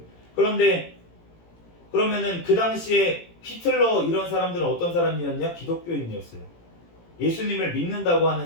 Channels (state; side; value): late; right; 18 ms